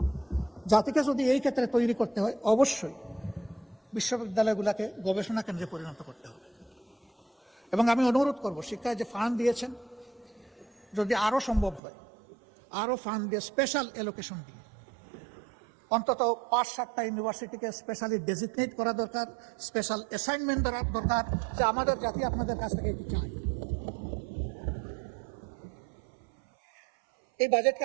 জাতিকে যদি এই ক্ষেত্রে তৈরি করতে হয়, অবশ্যই বিশ্ববিদ্যালয়গুলোকে গবেষণা কেন্দ্রে পরিণত করতে হবে। এবং আমি অনুরোধ করব, শিক্ষায় যে ফান্ড দিয়েছেন, যদি আরও সম্ভব হয় আরও ফান্ড দিয়ে, স্পেশাল অ্যালোকেশন দিয়ে অন্তত 5-7টা ইউনিভার্সিটিকে স্পেশালি ডেজিগনেট করা দরকার, স্পেশাল অ্যাসাইনমেন্ট দেওয়া দরকার, যে আমাদের জাতি আপনাদের কাছ থেকে এটি চায়। এই বাজেটকে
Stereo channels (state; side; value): drops out; left; at 11.8 s